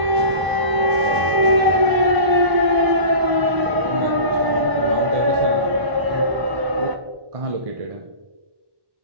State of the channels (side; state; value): left; late; 1.0 ms